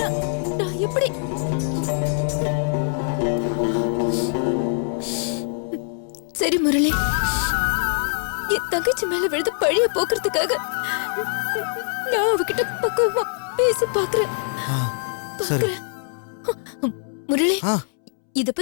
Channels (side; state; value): right; silent; 63 dB below the other